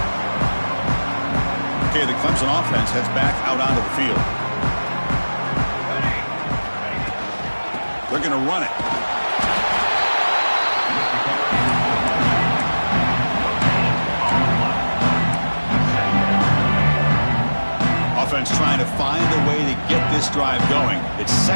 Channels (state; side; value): inverted; both; correlation -1.00